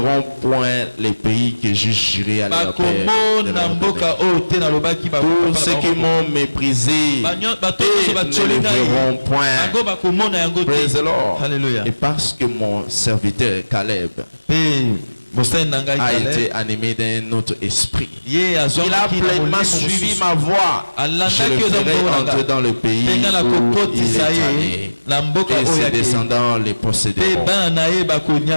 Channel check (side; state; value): both; inverted; correlation -1.00